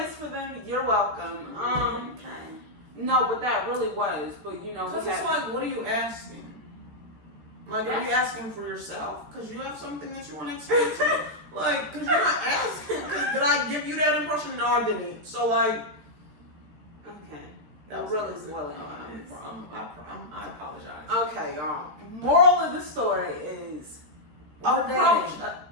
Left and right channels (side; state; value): left; late; 13 ms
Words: for them. You're welcome. Okay. No, but that really was. But Because it's like, what are you asking? Like, are you asking for yourself? Because you have something that you want to explain to? Like, because you're not asking. Because did I give you that impression? No, I didn't. So, like. Okay. That was really really swelling. I apologize. Okay, y'all. Moral of the story is approach.